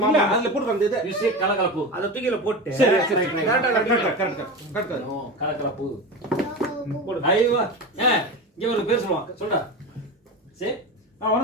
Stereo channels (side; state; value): both; normal; correlation 0.25